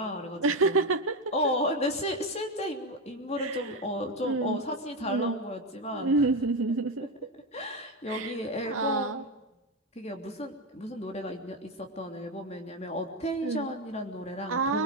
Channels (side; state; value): both; normal; correlation 0.12